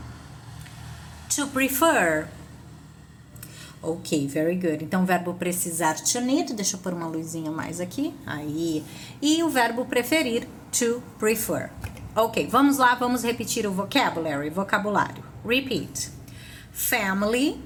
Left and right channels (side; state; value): both; identical; correlation 1.00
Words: to prefer. Ok, very good. Então, o verbo precisar, to need, deixa eu pôr uma luzinha mais aqui, aí. E o verbo preferir, to prefer. Ok, vamos lá, vamos repetir o vocabulário. Repeat. Family,